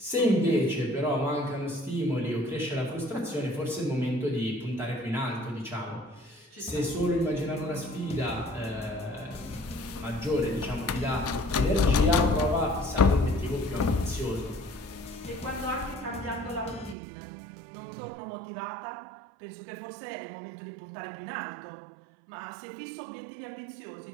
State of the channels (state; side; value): drops out; left; at 16.9 s